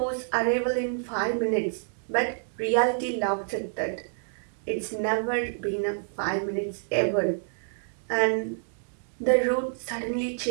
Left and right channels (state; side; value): silent; left; digital silence